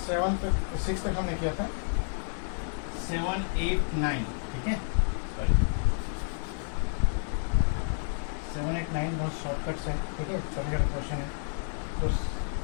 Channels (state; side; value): silent; right; digital silence